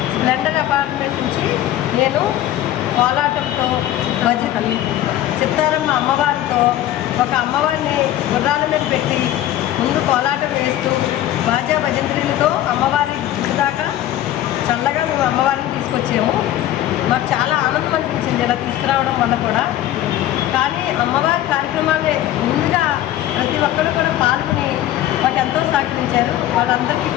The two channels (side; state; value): right; quieter; 13.2 dB